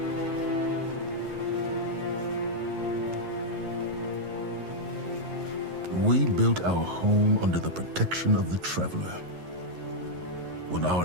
We built our home under the protection of the Traveler. When our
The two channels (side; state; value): left; late; 11 ms